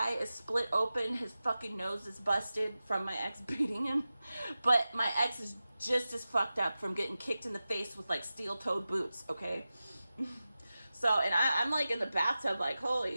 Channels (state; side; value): inverted; both; correlation -0.94